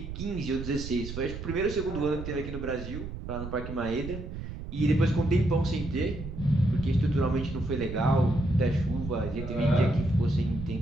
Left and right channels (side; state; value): right; noise; rumble, 8 dB below the sound